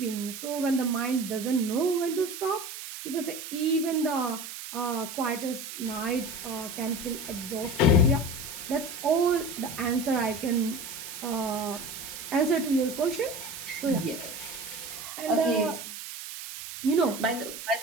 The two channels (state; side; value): noise; right; hiss, 9 dB below the sound